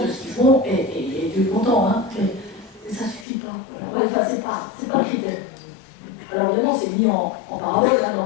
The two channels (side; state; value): right; drops out; at 3.2 s